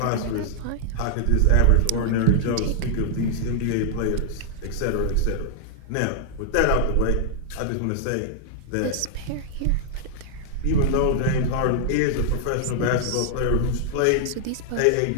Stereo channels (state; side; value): different; both; correlation -0.01